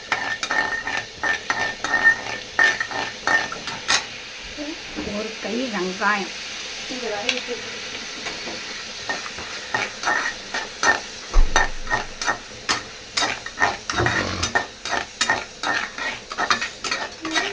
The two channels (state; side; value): identical; both; correlation 1.00